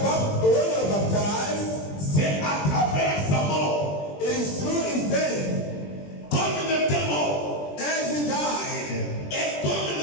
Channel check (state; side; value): late; right; 20 ms